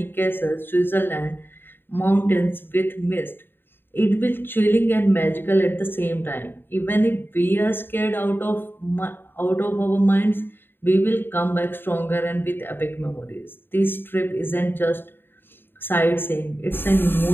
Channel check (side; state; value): right; late; 0.099 ms